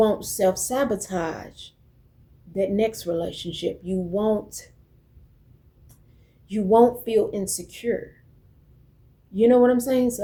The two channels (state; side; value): identical; both; correlation 1.00